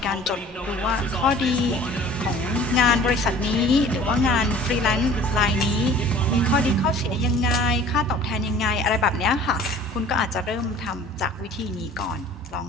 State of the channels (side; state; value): both; normal; correlation 0.48